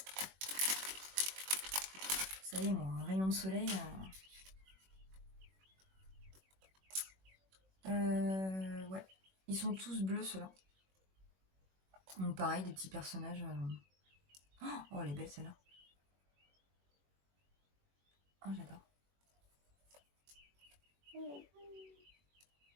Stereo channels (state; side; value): late; left; 21 ms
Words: Ça y est, moi, un rayon de soleil. Ouais, ils sont tous bleus ceux-là. Donc pareil, des petits personnages. Oh, elle est belle celle-là. Oh, j'adore.